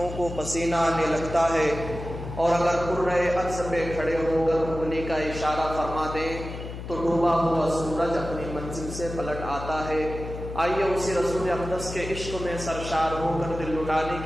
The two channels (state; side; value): noise; left; hum, 9 dB below the sound